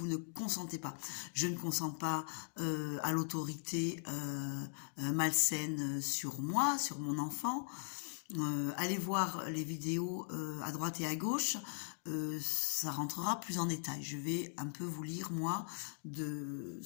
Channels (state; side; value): silent; right; digital silence